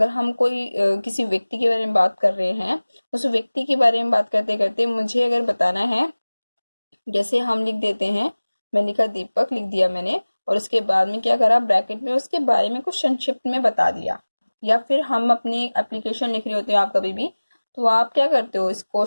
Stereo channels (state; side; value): inverted; both; correlation -1.00